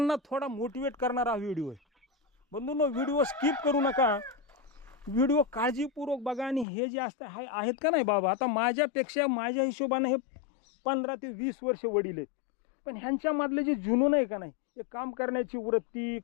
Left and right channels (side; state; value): right; drops out; at 6.7 s